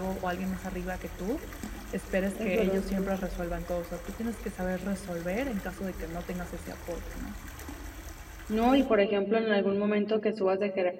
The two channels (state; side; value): identical; both; correlation 1.00